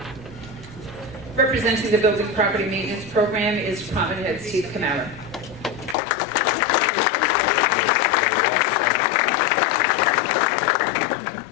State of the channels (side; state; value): right; drops out; at 6.0 s